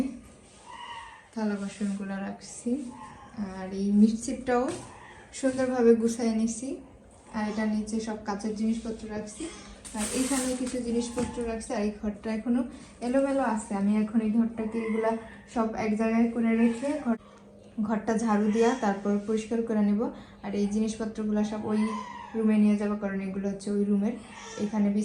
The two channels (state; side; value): identical; both; correlation 1.00